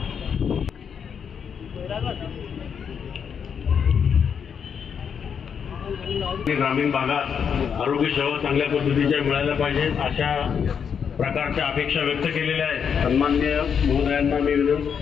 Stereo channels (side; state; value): right; quieter; 7.1 dB